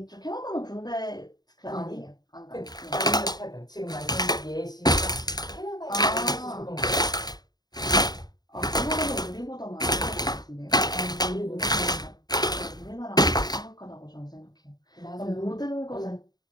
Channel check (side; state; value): right; late; 0.20 ms